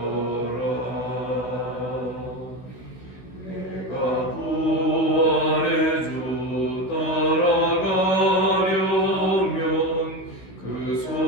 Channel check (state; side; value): late; right; 16 ms